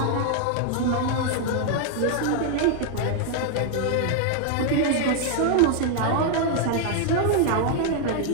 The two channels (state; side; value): different; both; correlation 0.00